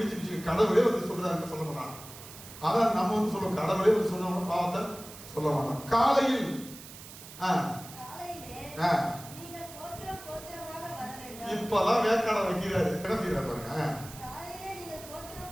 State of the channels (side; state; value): right; noise; hiss, 15 dB below the sound